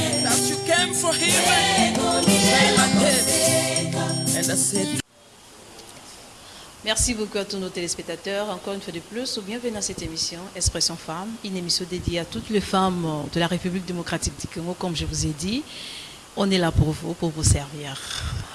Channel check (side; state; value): both; identical; correlation 1.00